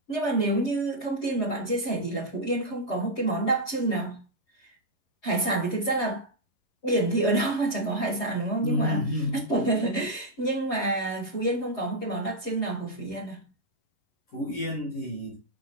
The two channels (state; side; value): late; right; 11 ms